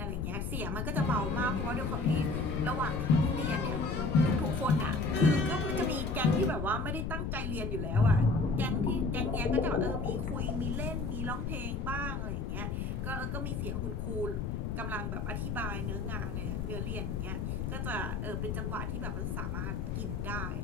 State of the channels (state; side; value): noise; left; rumble, 2 dB below the sound